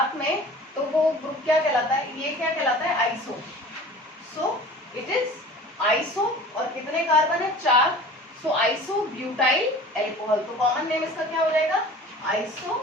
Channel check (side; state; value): both; normal; correlation 0.42